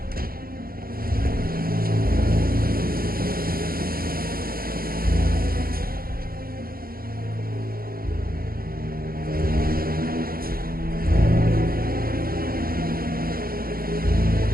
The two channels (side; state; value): left; late; 0.43 ms